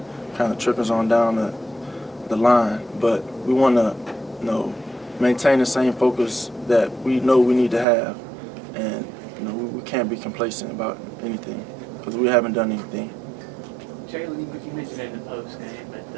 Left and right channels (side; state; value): left; drops out; at 7.9 s